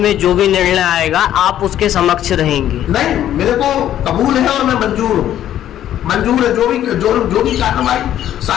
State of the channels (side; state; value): right; quieter; 11.6 dB